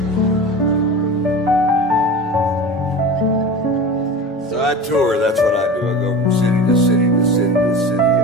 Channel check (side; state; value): both; normal; correlation 0.33